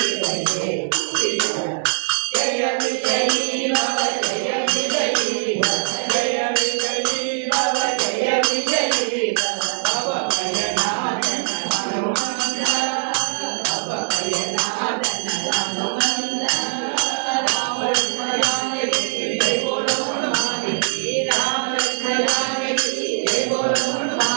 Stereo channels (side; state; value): left; silent; digital silence